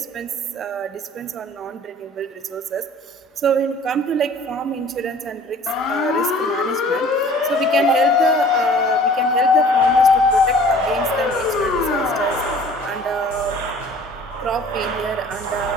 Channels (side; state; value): both; normal; correlation 0.50